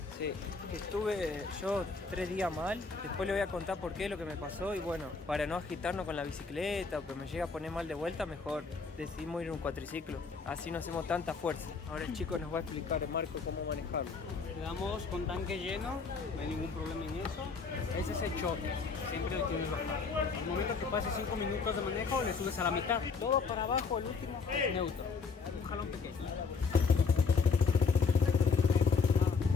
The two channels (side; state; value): right; quieter; 4.8 dB